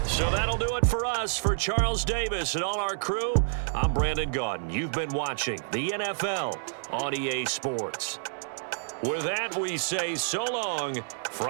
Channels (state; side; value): silent; left; 59 dB below the other